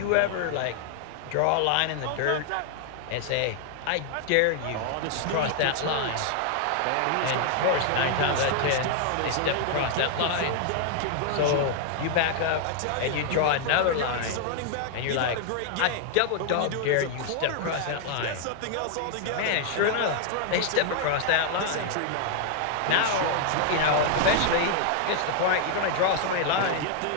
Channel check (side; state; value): both; different; correlation 0.00